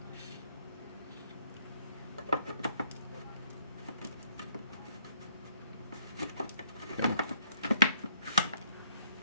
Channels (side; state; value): both; inverted; correlation -0.65